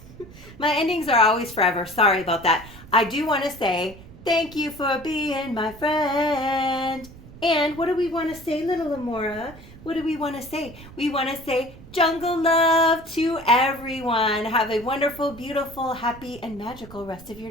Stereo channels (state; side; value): noise; right; rumble, 18 dB below the sound